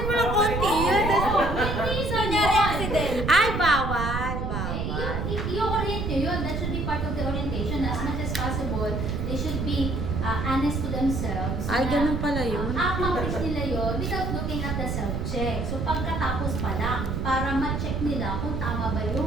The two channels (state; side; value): noise; right; rumble, 2 dB below the sound